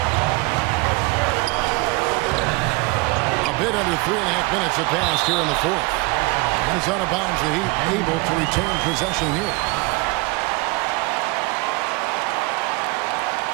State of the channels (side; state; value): left; quieter; 25.5 dB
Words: A bit under 3.5 minutes have passed here in the fourth. And it's out of bounds. The Heat able to retain possession here.